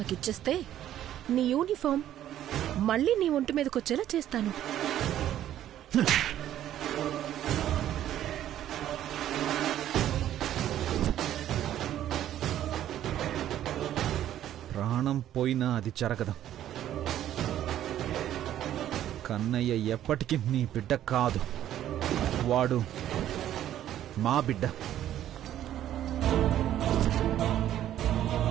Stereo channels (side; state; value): left; quieter; 11.8 dB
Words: నీ యూనిఫామ్ మళ్ళీ నీ ఒంటి మీదకొచ్చేలా చేస్తాను. ప్రాణం పోయినా అది జరగదు. కన్నయ్య ఎప్పటికీ నీ బిడ్డ కాదు, వాడు మా బిడ్డ.